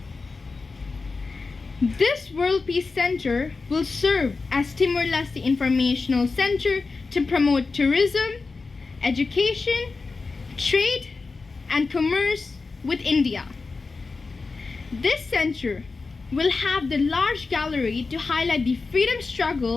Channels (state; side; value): quieter; right; 4.1 dB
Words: This World Peace Center will serve as Timor-Leste Informational Center to promote tourism, education, trade, and commerce with India. This center will have the large gallery to highlight the freedom